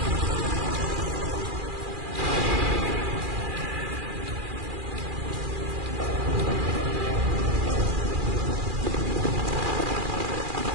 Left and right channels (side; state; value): left; late; 2.4 ms